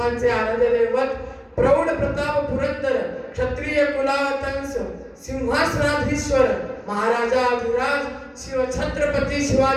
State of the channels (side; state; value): both; identical; correlation 1.00